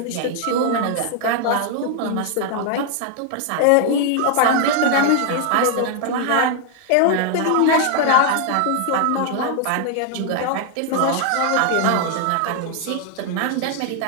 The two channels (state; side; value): different; both; correlation 0.00